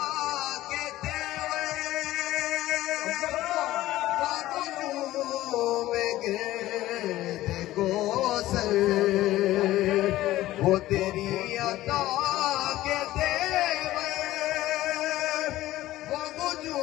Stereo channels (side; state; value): right; quieter; 15.6 dB